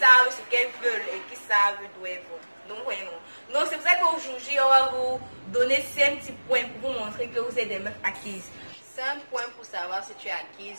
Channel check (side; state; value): both; inverted; correlation -1.00